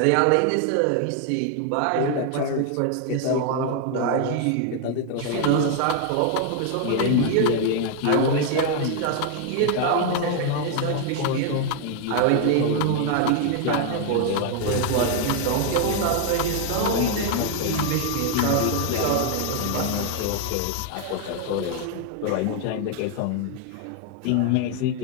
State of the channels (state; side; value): different; both; correlation 0.00